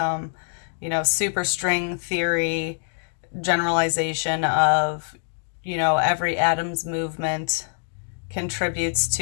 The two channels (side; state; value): right; silent; digital silence